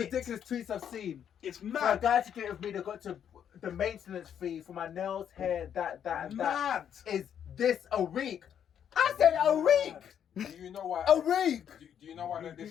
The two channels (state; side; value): quieter; right; 8.9 dB